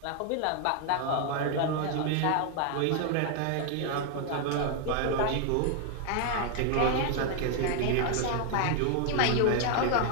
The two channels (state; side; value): different; both; correlation 0.00